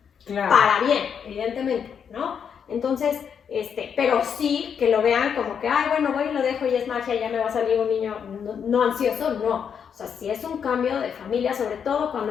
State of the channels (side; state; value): right; quieter; 7.4 dB